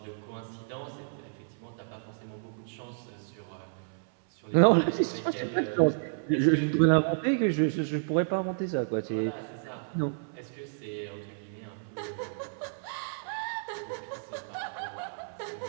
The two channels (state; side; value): silent; left; 57 dB below the other